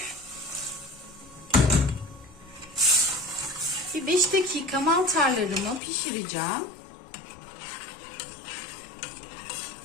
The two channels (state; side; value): drops out; right; at 5.8 s